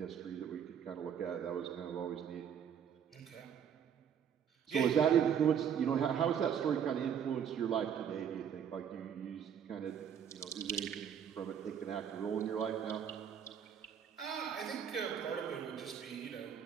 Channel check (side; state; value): left; quieter; 8.2 dB